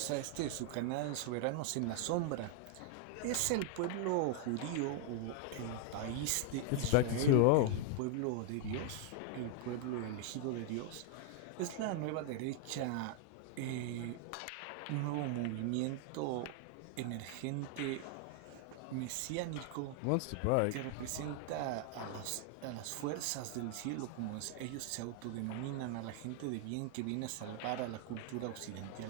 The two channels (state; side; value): different; both; correlation 0.00